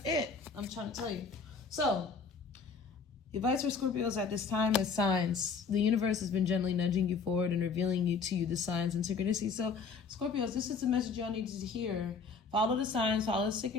it. I'm trying to tell you. So, advice for Scorpios at this time is signs. The universe has been gently nudging you forward and revealing to you the signs and synchronicities. So, Scorpios, this is the message y'all need to hear. Follow the signs, follow the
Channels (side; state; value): right; quieter; 5.1 dB